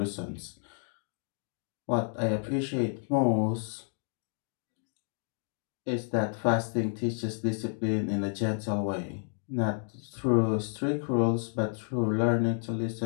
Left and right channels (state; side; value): silent; right; 57 dB below the other